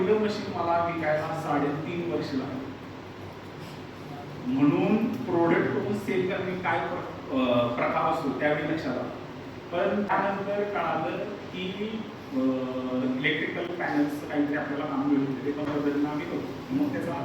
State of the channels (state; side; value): identical; both; correlation 1.00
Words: मशीन मला विकायला 3.5 वर्ष लागली. म्हणून प्रोडक्ट करून सेल करणे काय प्रकार असतो त्यावेळी लक्षात आलं. पण त्यानंतर कळालं की इलेक्ट्रिकल पॅनल्स काहीतरी आपल्याला काम मिळत होते, ते त्या पद्धतीनं आम्ही करतो. मग त्याचा